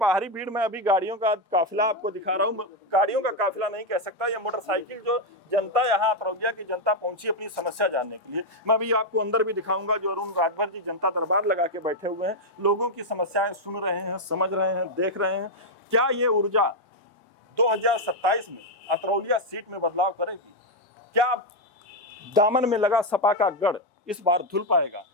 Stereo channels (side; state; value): both; normal; correlation 0.02